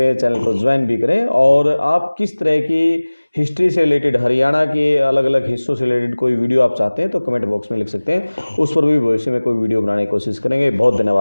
चैनल को ज्वाइन भी करें। और आप किस तरह की हिस्ट्री से रिलेटेड, हरियाणा के अलग अलग हिस्सों से रिलेटेड कोई वीडियो आप चाहते हैं तो कमेंट बॉक्स में लिख सकते हैं, उस पर भी भविष्य में कोई वीडियो बनाने की कोशिश करेंगे। बहुत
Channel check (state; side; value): inverted; both; correlation -1.00